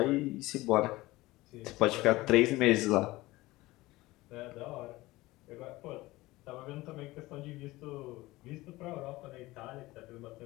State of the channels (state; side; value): quieter; right; 19.3 dB